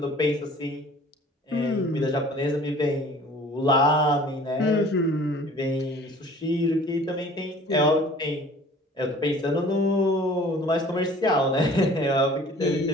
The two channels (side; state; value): both; normal; correlation 0.49